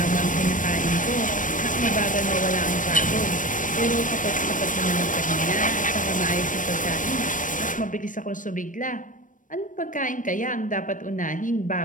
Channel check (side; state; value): right; late; 0.38 ms